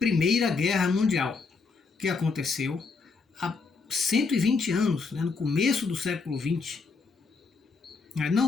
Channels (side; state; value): right; quieter; 4.5 dB